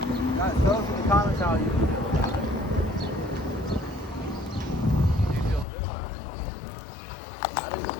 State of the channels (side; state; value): right; drops out; at 5.7 s